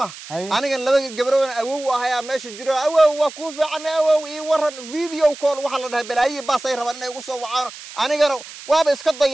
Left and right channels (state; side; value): noise; right; hiss, 15 dB below the sound